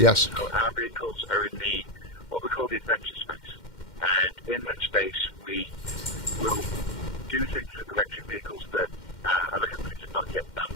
Yes. So our vehicles are in what we call the adventure space. And in that space, we will do things with electric vehicles that other companies have not yet done.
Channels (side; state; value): right; late; 2.1 ms